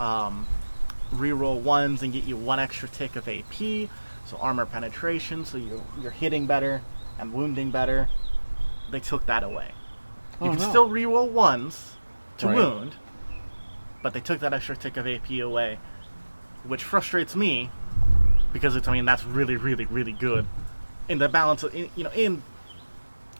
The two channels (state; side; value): inverted; both; correlation -1.00